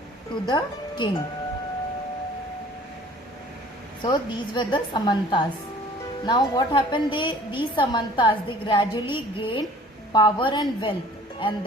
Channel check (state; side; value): normal; both; correlation 0.50